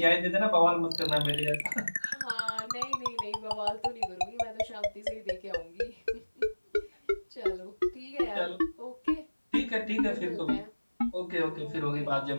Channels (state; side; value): inverted; both; correlation -1.00